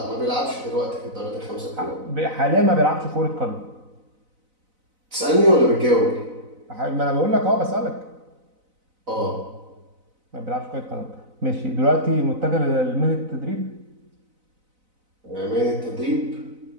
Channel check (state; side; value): late; left; 4.0 ms